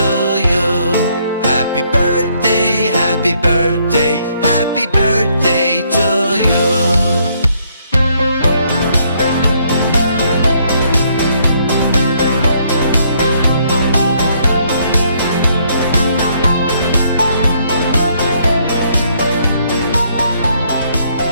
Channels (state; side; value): inverted; both; correlation -0.70